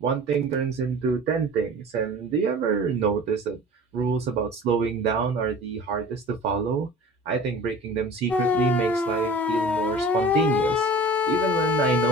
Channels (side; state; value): both; normal; correlation 0.41